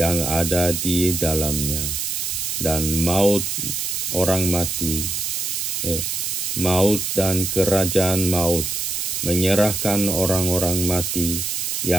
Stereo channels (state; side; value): noise; right; hiss, 2 dB below the sound